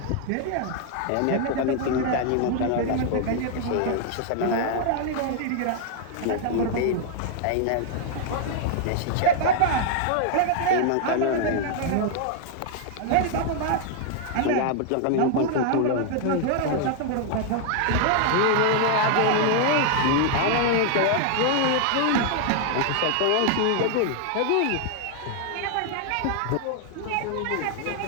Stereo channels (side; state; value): both; different; correlation 0.00